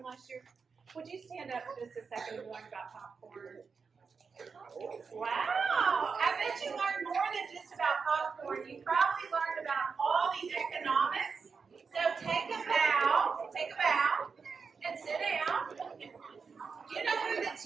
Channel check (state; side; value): quieter; left; 5.4 dB